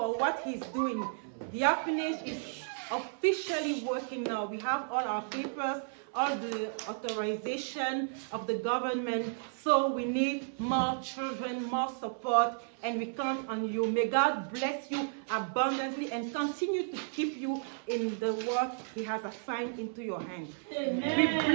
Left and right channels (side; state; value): left; silent; 56 dB below the other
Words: what He's doing. The orphanage is officially working now. We have all our papers, all the authorization of the government. So we need more children, more support, and we count on you. May God bless you abundantly and continue to keep you in the work He has assigned into your hands. Amen. We